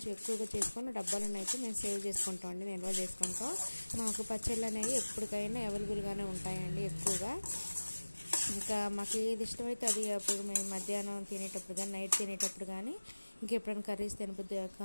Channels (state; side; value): inverted; both; correlation -1.00